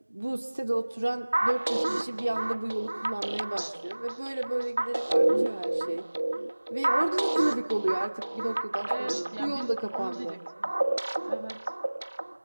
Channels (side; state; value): both; inverted; correlation -1.00